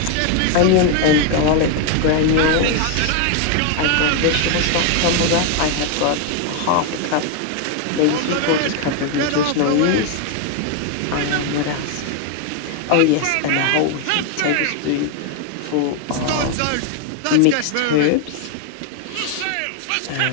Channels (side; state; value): both; different; correlation 0.01